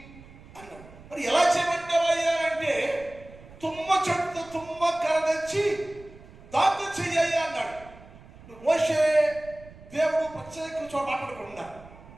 అన్నాడు. మరి ఎలా చేయమంటావయ్యా అంటే తుమ్మ చెట్టు తుమ్మ కర్ర తెచ్చి దాంతో చెయ్యి అన్నాడు. మోషే దేవుడు ప్రత్యేక చోట మాట్లాడకుండా,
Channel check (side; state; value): right; noise; rumble, 20 dB below the sound